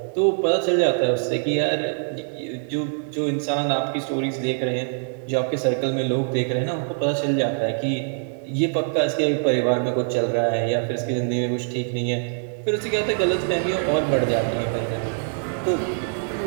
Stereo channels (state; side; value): silent; left; digital silence